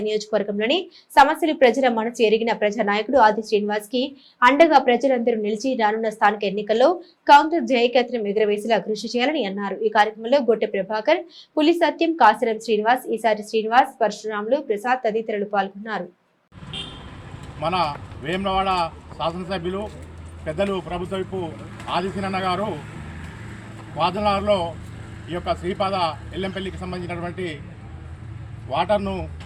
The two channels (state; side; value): identical; both; correlation 1.00